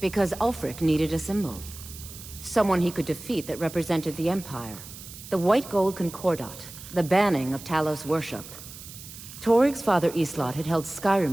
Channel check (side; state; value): right; noise; hiss, 15 dB below the sound